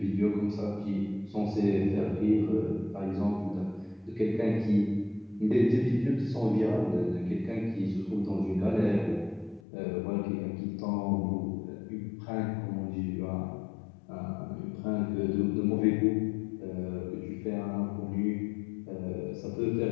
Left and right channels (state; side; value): drops out; right; at 9.6 s